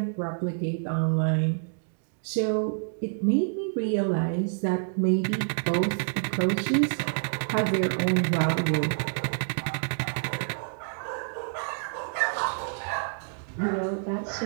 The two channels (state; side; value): silent; left; digital silence